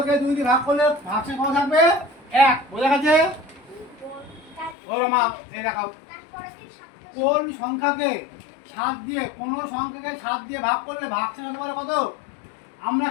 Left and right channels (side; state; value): right; drops out; at 4.8 s